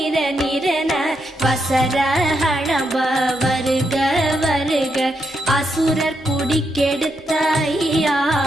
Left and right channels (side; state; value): both; normal; correlation 0.81